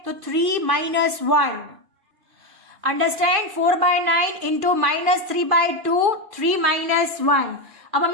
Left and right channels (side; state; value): left; late; 2.5 ms